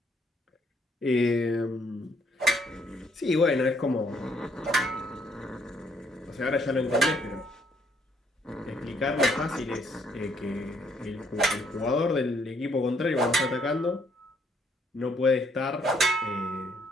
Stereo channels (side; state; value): both; normal; correlation 0.69